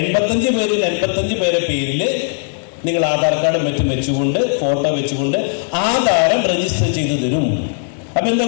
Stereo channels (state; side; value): silent; right; digital silence